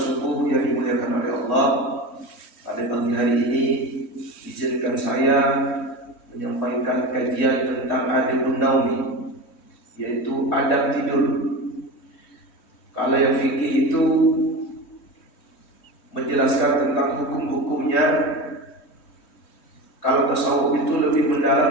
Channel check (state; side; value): late; right; 3.1 ms